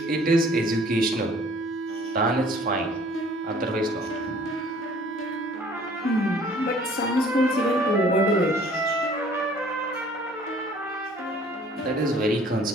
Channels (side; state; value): both; normal; correlation 0.54